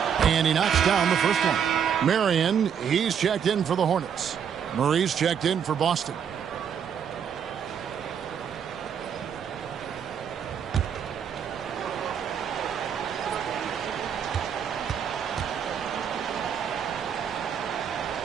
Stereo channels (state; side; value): quieter; left; 7.9 dB